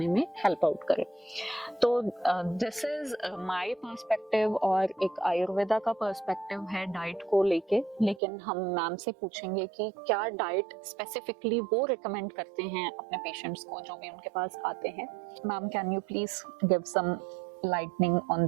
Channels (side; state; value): left; drops out; at 8.2 s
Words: में हेल्प आउट करे। तो दिस इज माय पर्सपेक्टिव और एक आयुर्वेदा का पर्सपेक्टिव है डाइट को लेके। लेकिन हम मैम से पूछेंगे कि क्या डाइट स्पेसिफिकली वो रिकमेंड करते हैं अपने पेशेंट्स को जो भी उनके पास आते हैं। Ma'am, can you please give some lightning on